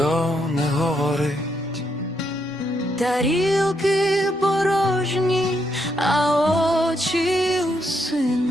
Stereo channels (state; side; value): normal; both; correlation 0.77